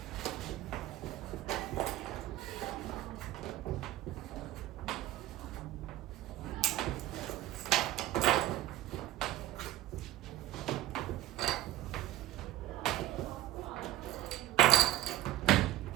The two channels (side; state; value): left; quieter; 15.0 dB